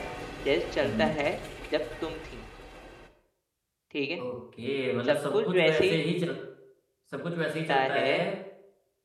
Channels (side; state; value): both; identical; correlation 1.00